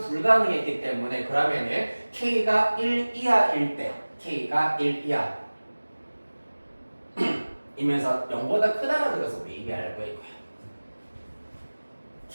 때문에 그러면은 K가 1 이하일 때 K가 1 이하 이면서 0보다 크다라는 것을 우리 이미 알고 있고요.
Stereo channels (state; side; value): inverted; both; correlation -1.00